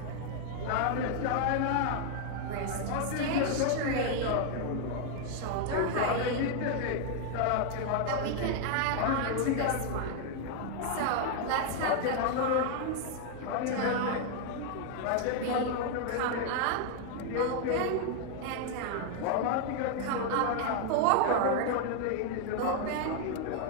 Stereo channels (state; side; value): different; both; correlation 0.00